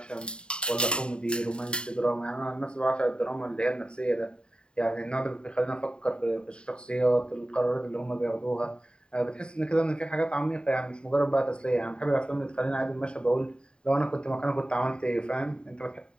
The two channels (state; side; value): late; right; 0.051 ms